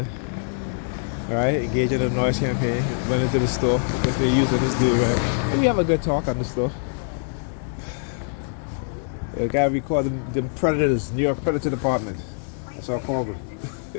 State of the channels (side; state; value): right; silent; digital silence